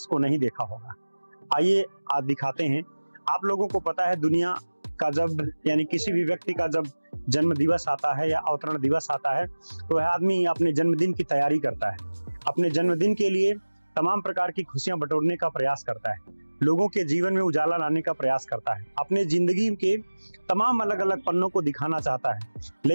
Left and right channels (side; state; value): both; inverted; correlation -1.00